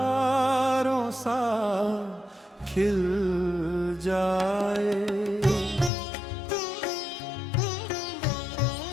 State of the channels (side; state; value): right; drops out; at 5.9 s